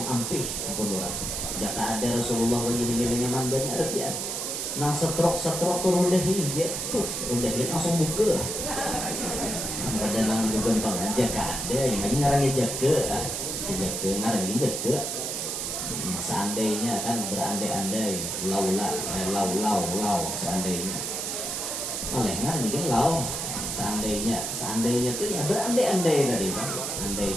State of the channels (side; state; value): right; noise; hiss, 3 dB below the sound